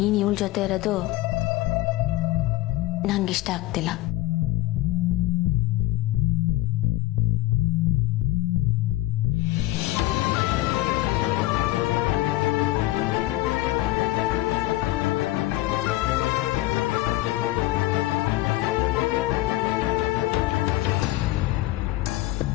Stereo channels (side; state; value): right; quieter; 17.5 dB